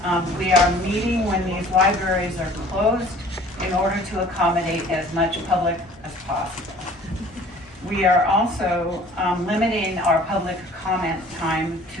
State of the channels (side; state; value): both; normal; correlation 0.50